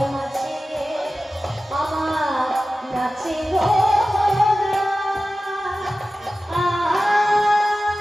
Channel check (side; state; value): both; normal; correlation 0.95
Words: মাঝে আমার নাচে গো